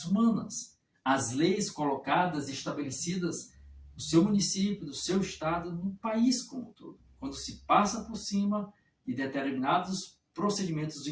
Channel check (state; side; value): identical; both; correlation 1.00